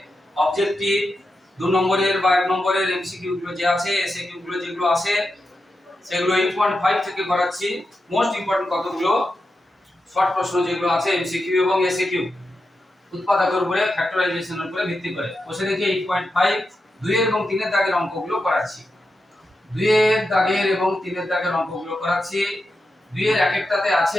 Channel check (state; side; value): normal; both; correlation 0.88